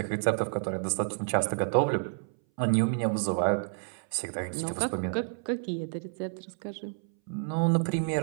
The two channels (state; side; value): silent; left; 58 dB below the other